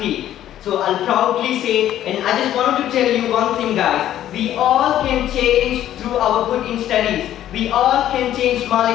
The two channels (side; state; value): right; quieter; 12.0 dB